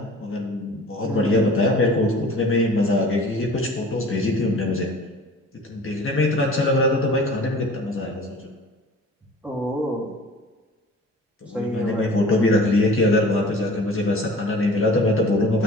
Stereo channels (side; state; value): both; normal; correlation 0.45